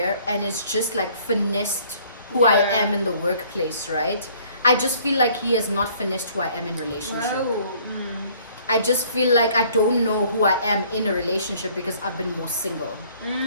and it's just like finessed who I am in the workplace, right? I just feel like he has not finished who I am in relationship. I just feel like I don't know who I am in a relationship because I've been more single,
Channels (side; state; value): both; inverted; correlation -0.58